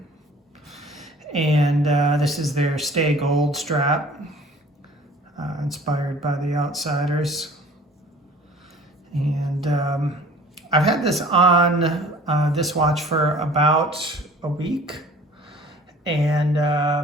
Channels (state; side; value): normal; both; correlation 0.49